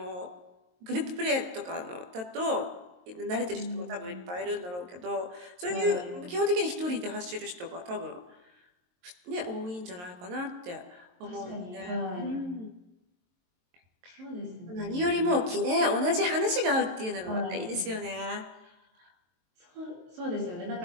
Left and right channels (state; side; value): late; left; 22 ms